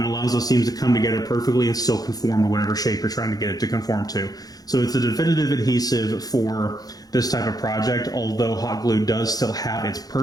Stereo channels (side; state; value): right; late; 0.18 ms